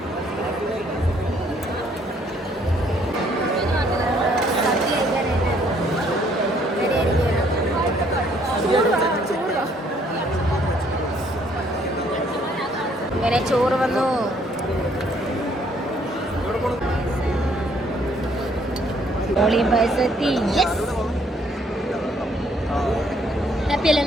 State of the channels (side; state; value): both; normal; correlation 0.65